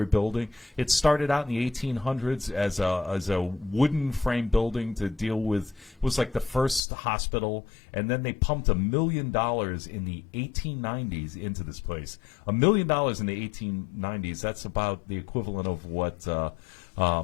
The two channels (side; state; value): right; drops out; at 6.8 s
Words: building. It started out in the 1800s as a wooden frame building to deal with, it was like the first hospital, and then they pumped $1 million in the 1890s into this place. $1 million in the 1890s, that's about the equivalent of what